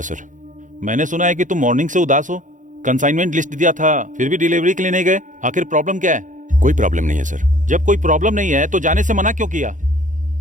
सर। मैंने सुना है कि तुम मॉर्निंग से उदास हो। कंसाइनमेंट लिस्ट दिया था, फिर भी डिलीवरी के लिए नहीं गए। आखिर प्रॉब्लम क्या है? कोई प्रॉब्लम नहीं है सर। जब कोई प्रॉब्लम नहीं है तो जाने से मना क्यों किया?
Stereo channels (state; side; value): late; left; 0.37 ms